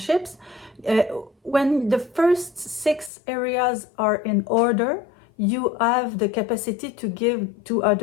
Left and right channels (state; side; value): drops out; right; at 3.1 s